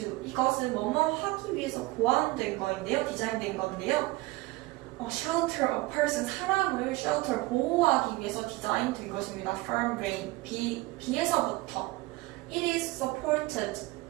이것은 뭐뭐 하기 위해서 고안된 거인데요. 디자인된 건데요. shelter a person 사람을 shelter 보호하기 위해서 디자인된 것입니다. From rain 비에서부터 It is supported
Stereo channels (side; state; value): left; quieter; 21.1 dB